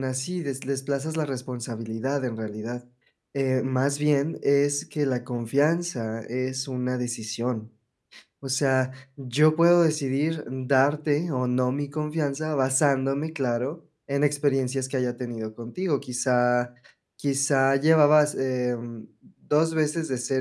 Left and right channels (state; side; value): identical; both; correlation 1.00